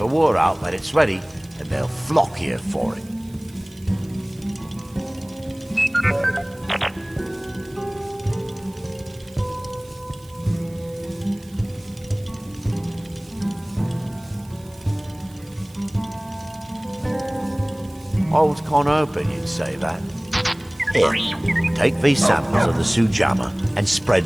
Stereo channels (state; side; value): noise; right; hiss, 26 dB below the sound